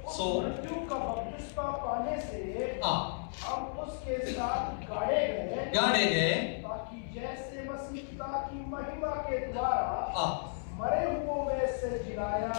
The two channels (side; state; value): right; silent; 55 dB below the other